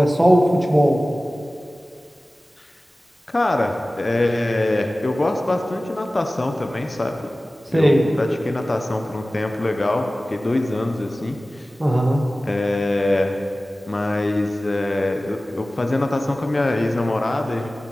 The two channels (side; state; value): both; normal; correlation 0.97